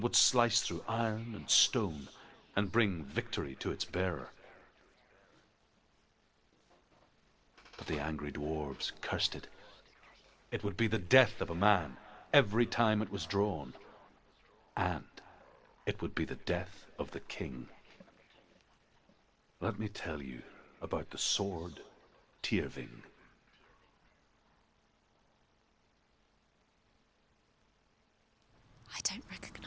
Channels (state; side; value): identical; both; correlation 1.00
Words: would slice through iron and stone and bring victory to its bearer. But the angry dwarves cursed it. It would be the death of a man every time it was drawn, and it would be the death of the king. Let me tell you about the sword Tyrving. I don't